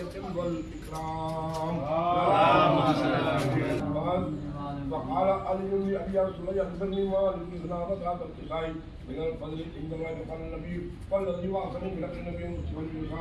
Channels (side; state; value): both; identical; correlation 1.00